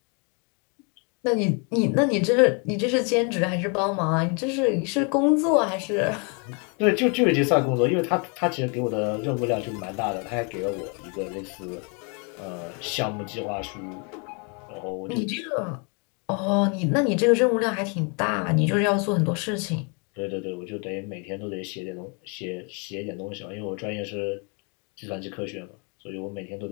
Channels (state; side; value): quieter; right; 35.2 dB